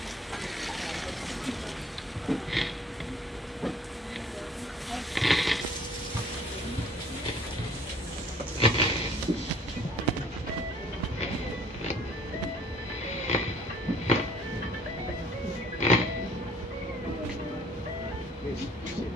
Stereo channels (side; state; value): both; normal; correlation 0.56